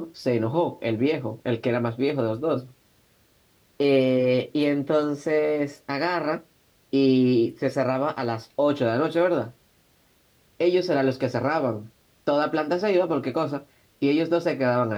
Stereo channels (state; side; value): identical; both; correlation 1.00